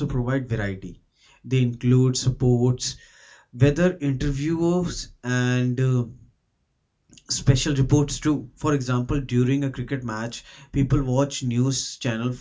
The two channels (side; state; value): both; identical; correlation 1.00